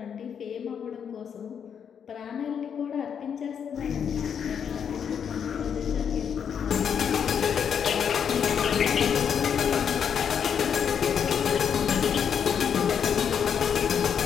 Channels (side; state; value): right; quieter; 7.7 dB